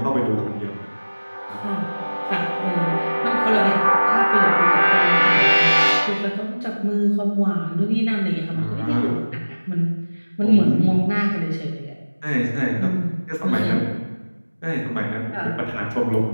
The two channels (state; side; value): inverted; both; correlation -1.00